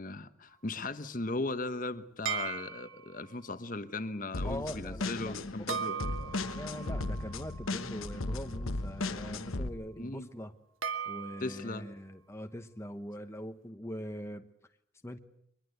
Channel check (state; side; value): normal; both; correlation 0.46